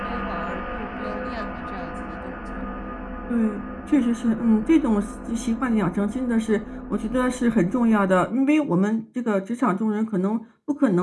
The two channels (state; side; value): identical; both; correlation 1.00